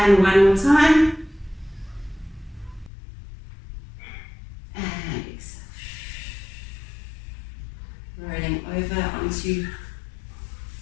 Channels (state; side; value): drops out; right; at 2.9 s